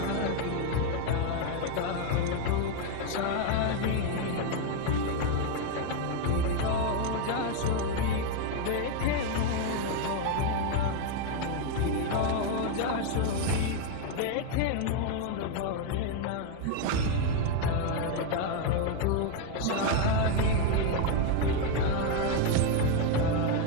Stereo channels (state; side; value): different; both; correlation 0.01